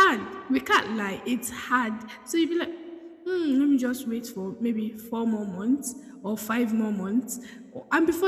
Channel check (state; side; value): identical; both; correlation 1.00